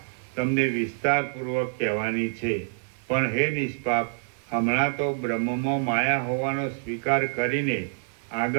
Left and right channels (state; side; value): silent; left; 55 dB below the other